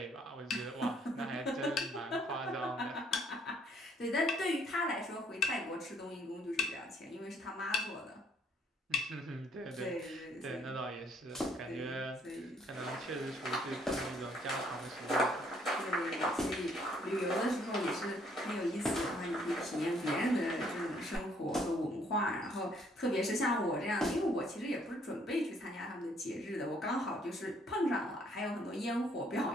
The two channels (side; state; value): both; normal; correlation 0.65